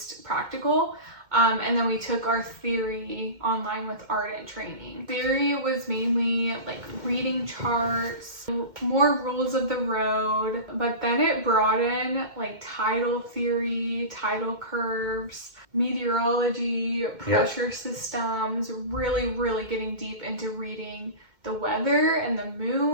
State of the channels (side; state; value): left; late; 2.1 ms